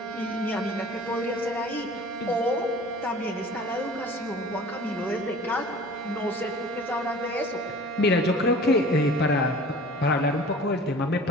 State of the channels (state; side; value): normal; both; correlation 0.44